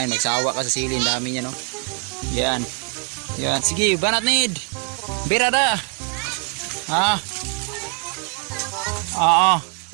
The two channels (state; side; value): quieter; left; 36.4 dB